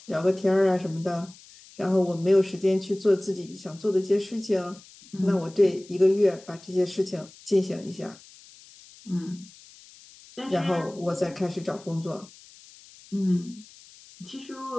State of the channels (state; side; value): noise; left; hiss, 22 dB below the sound